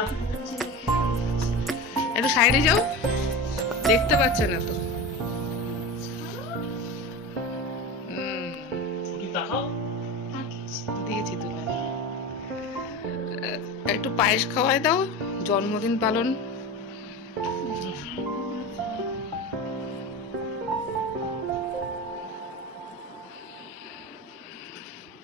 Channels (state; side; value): normal; both; correlation 0.27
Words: একটু সাইডে যাও, দেখতে পাচ্ছে না তো। দিয়েছি তুলে, একটু পায়েস খাওয়াই দাও, জন্মদিন পালন।